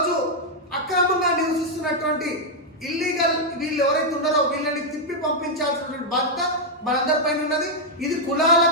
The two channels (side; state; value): both; normal; correlation -0.02